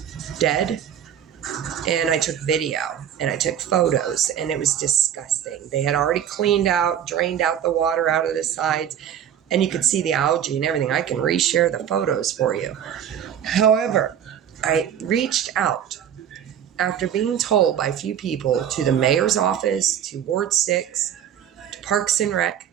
dead. And I took video and I took photos, and it was disgusting. They had already drained out the water out of the sides, and you could see the algae and everything. I can reshare the photos for you. However, I reached out after being told by a few people to the mayor's office, to Ward 6, to Parks and Rec,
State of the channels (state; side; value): quieter; left; 9.6 dB